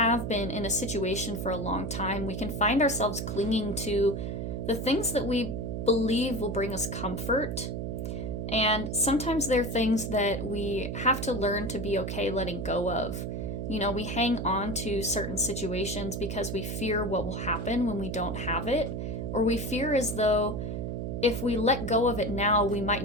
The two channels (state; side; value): noise; right; hum, 4 dB below the sound